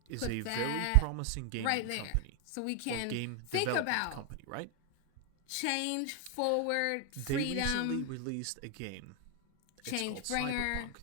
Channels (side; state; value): both; different; correlation 0.01